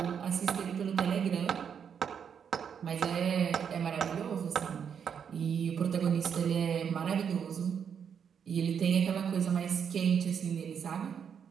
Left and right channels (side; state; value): left; quieter; 7.5 dB